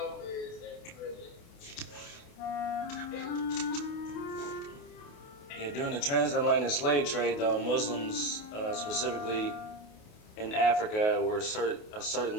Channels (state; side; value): late; right; 28 ms